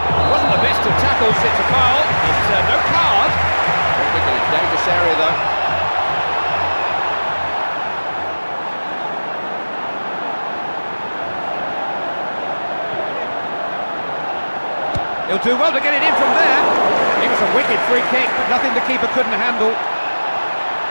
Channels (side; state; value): both; inverted; correlation -1.00